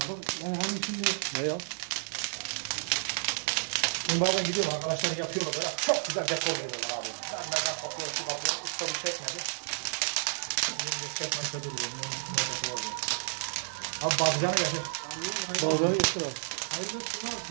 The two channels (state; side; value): silent; left; digital silence